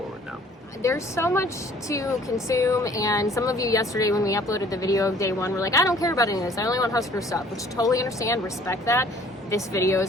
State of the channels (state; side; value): normal; both; correlation 0.55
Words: now. There's so much to consume, and some of you yesterday when we uploaded the video of day one were like, I don't care about any of this. I only want Husker stuff, which totally understand, respect that. This video